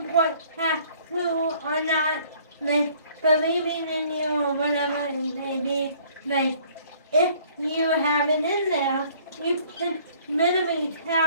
have to or not, like believing in you or whatever it may be, like if you have it in there, you can minimally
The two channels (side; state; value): both; inverted; correlation -0.57